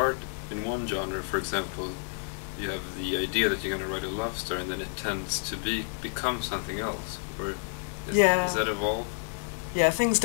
in one genre, for example, you have the idea that you're going to write a love story and then it tends to become something else? Or is that evolve? Yeah, things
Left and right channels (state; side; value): silent; right; digital silence